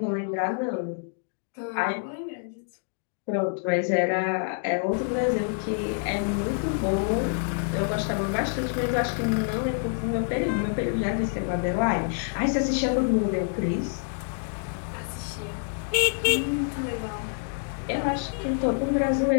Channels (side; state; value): right; silent; digital silence